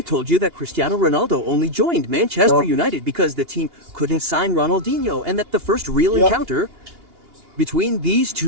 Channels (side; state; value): left; late; 2.8 ms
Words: told you that Cristiano Ronaldo only joined Manchester United because the team couldn't sign Ronaldinho, and that the first real encounter between these